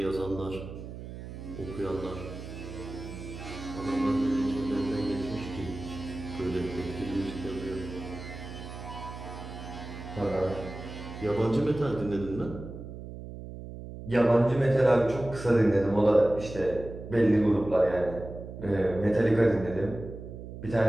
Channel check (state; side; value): noise; right; hum, 11 dB below the sound